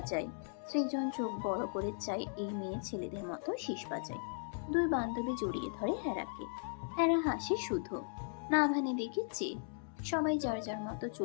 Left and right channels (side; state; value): right; silent; digital silence